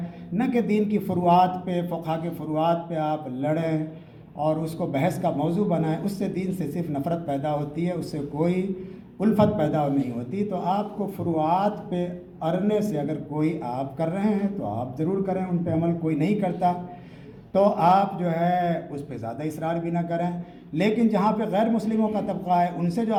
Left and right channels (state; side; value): identical; both; correlation 1.00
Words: نہ کہ دین کی فروعات پہ، فقہ کے فروعات پہ آپ لڑیں اور اس کو بحث کا موضوع بنائیں۔ اس سے دین سے صرف نفرت پیدا ہوتی ہے، اس سے کوئی الفت پیدا نہیں ہوتی۔ تو آپ کو فروعات پہ اڑنے سے اگر کوئی آپ کر رہے ہیں تو آپ ضرور کریں، ان پہ عمل کوئی نہیں کرتا تو آپ جو ہے اس پہ زیادہ اصرار بھی نہ کریں۔ لیکن جہاں پہ غیر مسلموں کا طبقہ ہے، ان سے جو